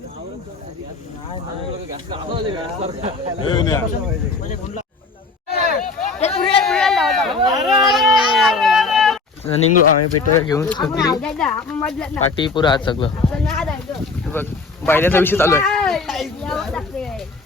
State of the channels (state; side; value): quieter; right; 4.0 dB